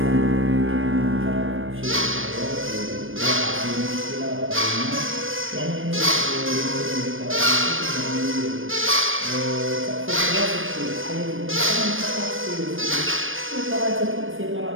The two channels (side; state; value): left; late; 0.59 ms